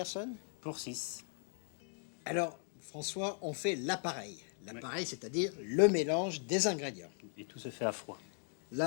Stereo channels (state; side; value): silent; right; 52 dB below the other